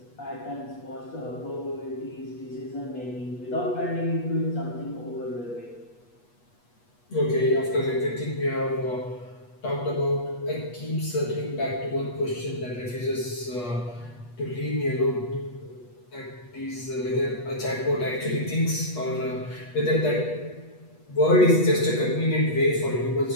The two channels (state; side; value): late; right; 8.3 ms